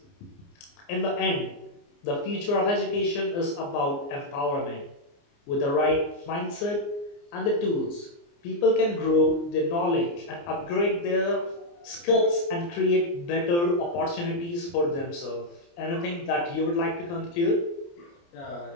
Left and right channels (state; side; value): late; right; 29 ms